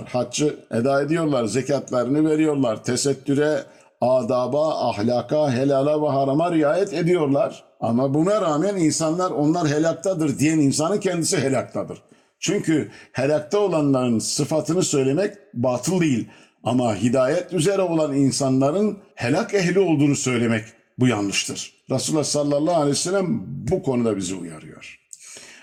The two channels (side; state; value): both; identical; correlation 1.00